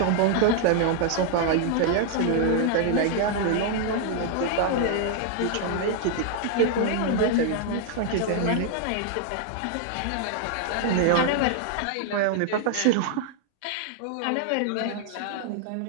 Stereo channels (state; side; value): different; both; correlation 0.00